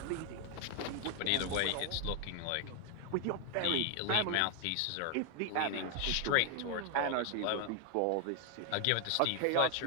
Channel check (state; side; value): different; both; correlation 0.00